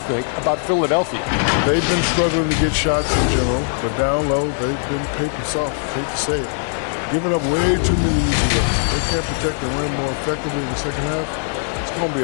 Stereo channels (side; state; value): right; silent; digital silence